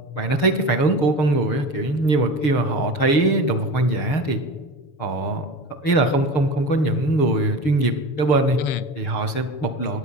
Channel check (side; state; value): right; late; 6.5 ms